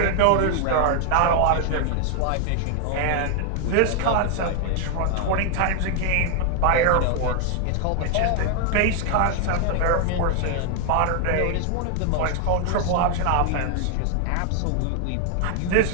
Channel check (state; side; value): different; both; correlation 0.00